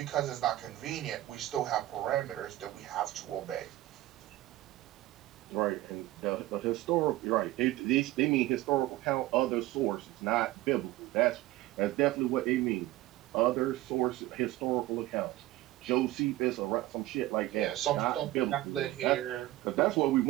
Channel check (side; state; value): left; quieter; 16.6 dB